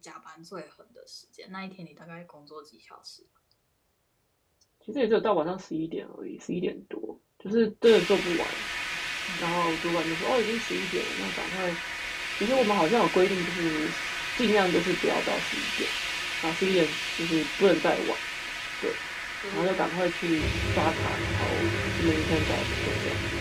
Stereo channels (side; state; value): both; identical; correlation 1.00